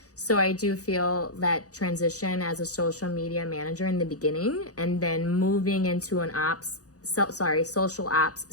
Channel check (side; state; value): right; late; 0.67 ms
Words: So I do feel that transition as a social media manager in the beginning, and then moving into an social ops